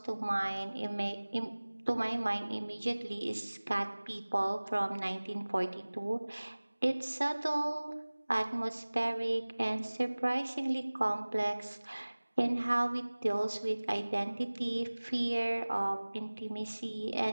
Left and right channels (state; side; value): inverted; both; correlation -1.00